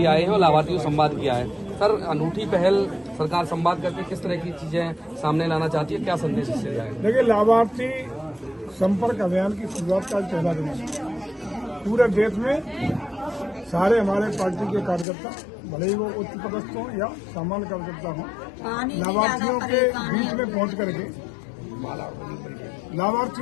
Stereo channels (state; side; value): drops out; right; at 15.1 s